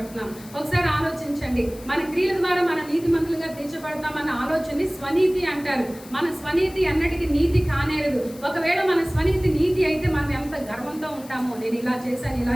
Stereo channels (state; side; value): noise; left; hiss, 20 dB below the sound